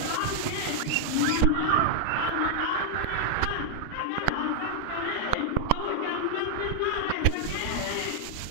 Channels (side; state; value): both; different; correlation -0.01